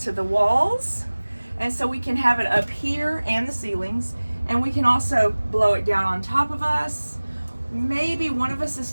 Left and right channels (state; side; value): inverted; both; correlation -1.00